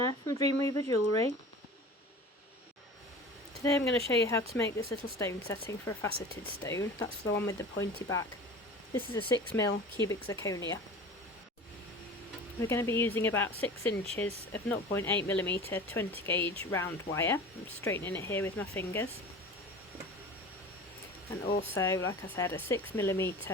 from Dream Weaver Jewellery. Today I'm going to show you how to make this little stone setting for a faceted stone. That's the one with the pointy back. This is a 6mm cubic zirconia. We're going to be using about 6 inches of 0.8mm 20 gauge round wire. I'm straightening it here with my fingers. And also, like I said, a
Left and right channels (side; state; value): both; normal; correlation 0.37